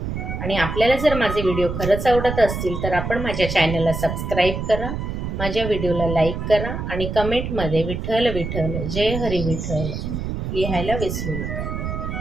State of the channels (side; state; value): right; noise; rumble, 4 dB below the sound